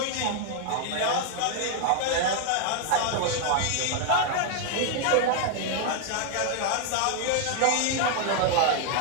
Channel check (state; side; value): different; both; correlation 0.00